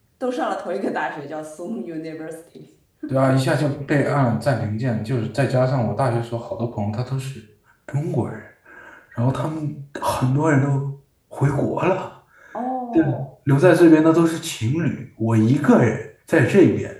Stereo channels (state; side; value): identical; both; correlation 1.00